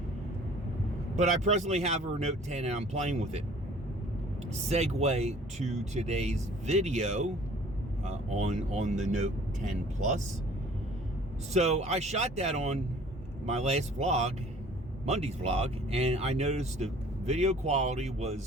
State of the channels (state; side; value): normal; both; correlation 0.52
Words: But I presently have her Note 10 and I'm playing with it. Segue to today's video on the Note 10 Plus. So I shot that on my last vlog, Monday's vlog, and I noticed the video quality